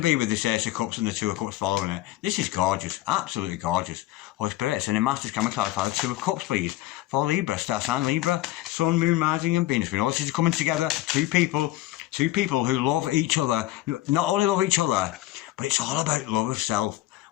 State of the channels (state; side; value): quieter; right; 16.3 dB